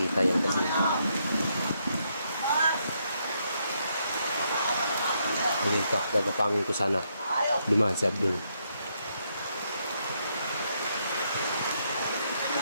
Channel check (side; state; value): both; inverted; correlation -0.76